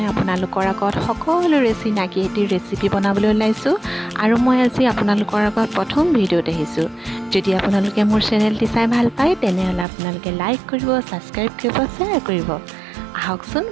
আপোনালোকৰ আগত সকলোৰে চিনাকি এটি ৰেচিপি বনাবলৈ ওলাইছোঁ আৰু মই আজি আপোনালোকৰ আগত প্ৰথম ভিডিঅ'ত আহিছোঁ। যদি আপোনালোকে মোৰ চেনেলটি চাই ভাল পায় তেনেহ'লে আপোনালোকে লাইক কৰিব, ছাবস্ক্ৰাইব কৰিব, শ্বেয়াৰ কৰিব। আহকচোন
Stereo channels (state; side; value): drops out; left; at 9.9 s